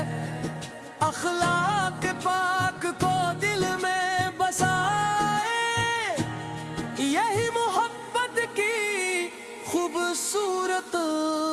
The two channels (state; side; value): identical; both; correlation 1.00